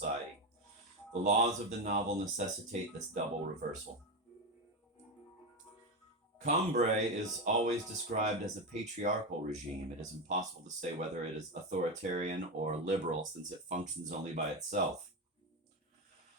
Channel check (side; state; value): both; normal; correlation 0.14